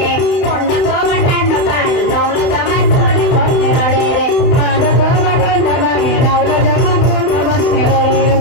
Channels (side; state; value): right; late; 31 ms